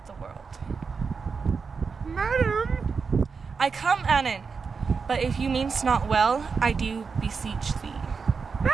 the world. Madam! I come, Annan, but if you mean'st not well, I do beseech thee.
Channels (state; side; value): quieter; left; 5.2 dB